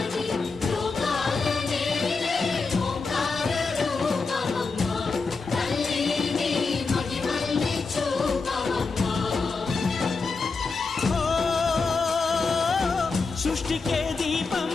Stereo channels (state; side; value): quieter; right; 4.4 dB